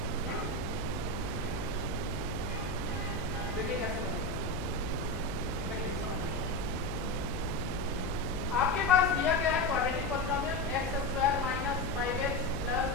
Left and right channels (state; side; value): noise; left; hum, 7 dB below the sound